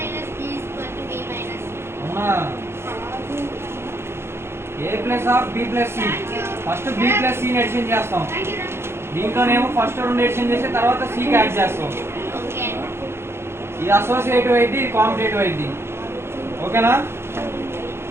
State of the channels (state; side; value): late; left; 0.12 ms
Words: B is equal to B minus C. అవునా? A plus of B plus C. First B plus సిని ఎడిషన్ చేస్తాం. దీంట్లోనేమో ఫస్ట్ రెండు ఎడిషన్ చేసి తర్వాత సికి యాడ్ చేస్తాం. Okay. ఇది అసోసియేటివ్ అయింది, ఇది కాంపిటేటివ్ అయింది. ఓకేనా?